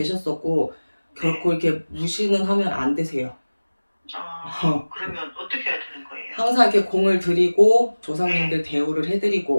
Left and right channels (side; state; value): both; inverted; correlation -1.00